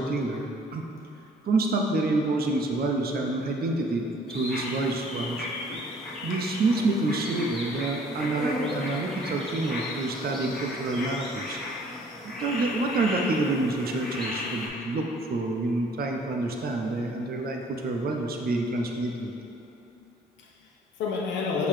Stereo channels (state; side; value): normal; both; correlation 0.57